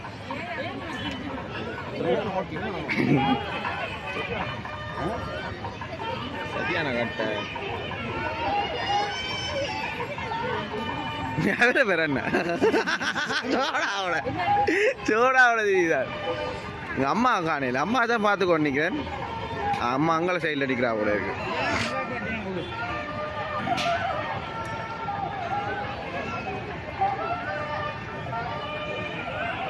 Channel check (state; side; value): identical; both; correlation 1.00